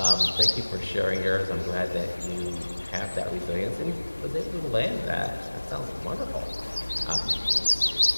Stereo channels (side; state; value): both; inverted; correlation -1.00